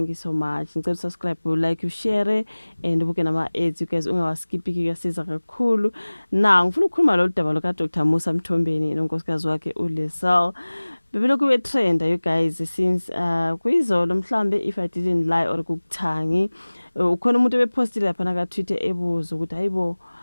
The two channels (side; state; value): both; inverted; correlation -1.00